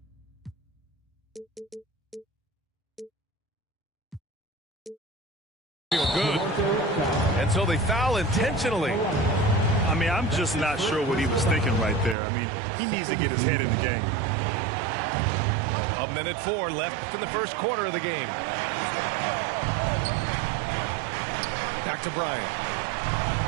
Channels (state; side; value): drops out; left; at 12.2 s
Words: feel good. And so they foul intentionally. I mean, I'm just not sure what he was thinking right there. I mean, he needs to get his head in the game. 1:04 left in the first quarter of the game. Back to Bryant.